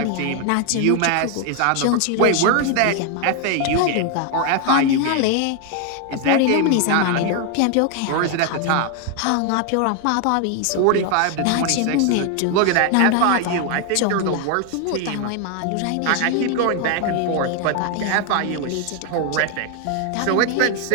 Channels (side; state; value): both; different; correlation 0.01